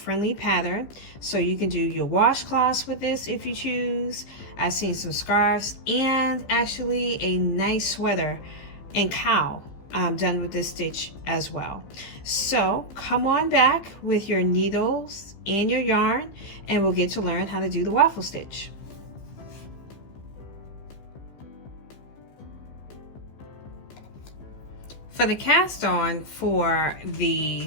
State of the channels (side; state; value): right; late; 15 ms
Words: pattern, so you can do your washcloths with this if you choose. I've seen some scarves and actually a nice sweater and cowl done with this stitch as well. So come on back with your needles and your yarn and we'll get to learn how to do the waffle stitch. For the cast on for